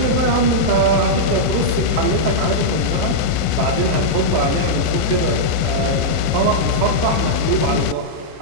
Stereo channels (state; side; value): late; left; 31 ms